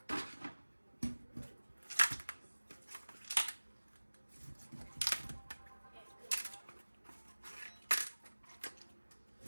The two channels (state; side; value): inverted; both; correlation -1.00